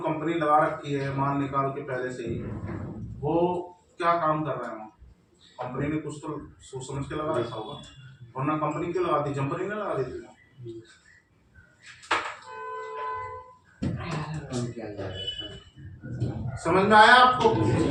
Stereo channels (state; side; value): identical; both; correlation 1.00